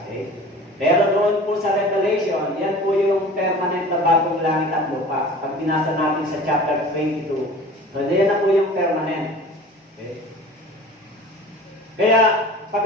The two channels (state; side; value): normal; both; correlation 0.41